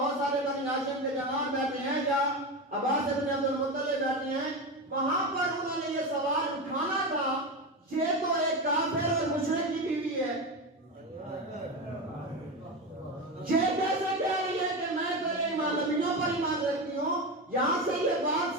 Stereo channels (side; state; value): both; normal; correlation 0.19